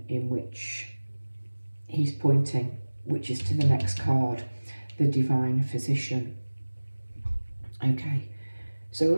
in which he's pointing, which is to the next card, the Divine Physician. Okay, so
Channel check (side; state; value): both; inverted; correlation -1.00